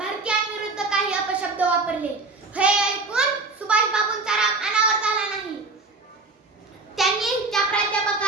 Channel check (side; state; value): left; quieter; 3.6 dB